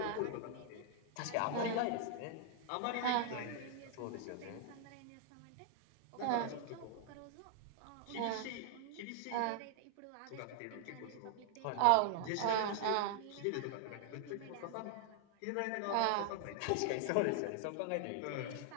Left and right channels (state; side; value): different; both; correlation 0.00